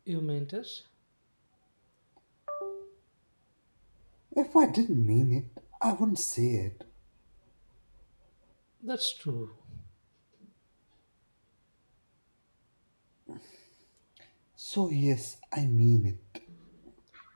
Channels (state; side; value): inverted; both; correlation -1.00